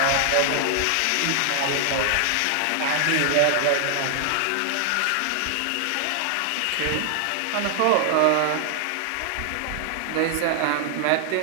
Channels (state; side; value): different; both; correlation 0.00